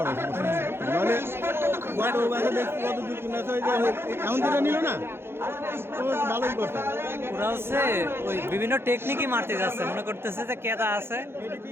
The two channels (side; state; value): left; late; 0.11 ms